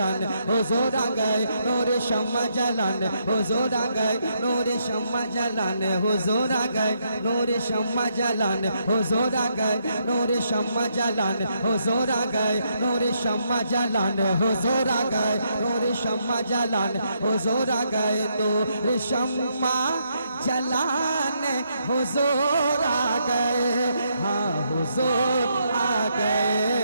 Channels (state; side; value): inverted; both; correlation -0.76